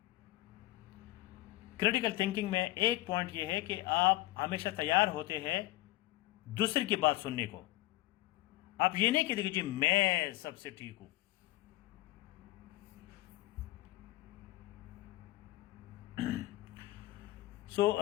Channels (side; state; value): right; quieter; 17.4 dB